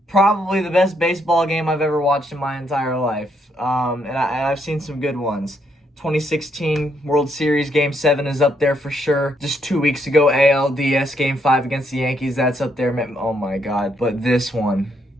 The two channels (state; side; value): normal; both; correlation 0.74